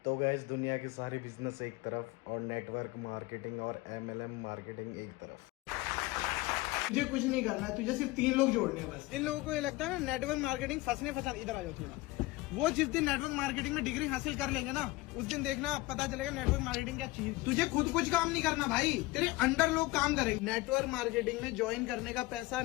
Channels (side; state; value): right; quieter; 20.3 dB